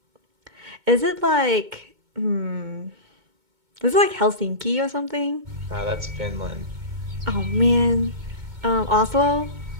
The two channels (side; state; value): left; late; 2.2 ms